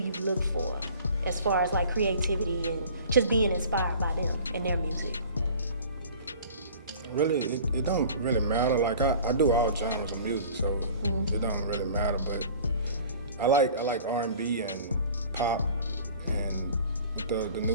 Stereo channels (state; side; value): inverted; both; correlation -0.45